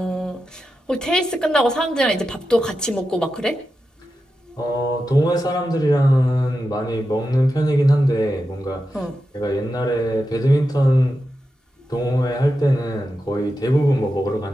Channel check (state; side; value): normal; both; correlation 0.90